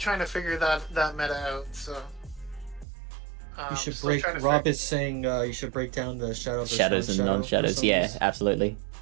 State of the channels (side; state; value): left; drops out; at 2.9 s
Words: to figure that meta out. So. You should break. Rob is saying you should break down the shadows and non-shadows. Yeah, absolutely.